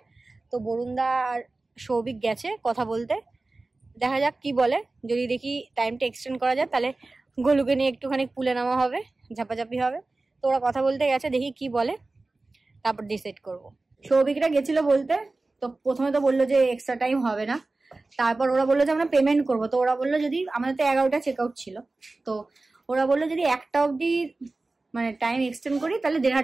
তো বরুণদা আর সৌভিক গেছে কথা বলতে, দেখা যাক কি বলে। যদি দেখি টাইমটা এক্সটেন্ড করা যায়, তাহলে গোলুকে নিয়ে একটুখানি পুলে নামা হবে, ঝাপাঝাপি হবে। তো ওরা কথা বলতে গেছে, দেখি কি বলে, তারপর ডিসাইড করব। সৌভিকরা গেছিল বলতে, তো প্রথমে তো বললো যে এক্সট্রা টাইম হবে না, তারপর ওরা বললো যে আমরা পেমেন্ট করবো। তো ওরা বললো যদি আমাদের তো 11টা চেক আউট ছিল, তো ওরা বললো যদি 1টা অবধি মানে টাইম এক্সটেন্ড করি তাহলে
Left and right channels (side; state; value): left; quieter; 3.3 dB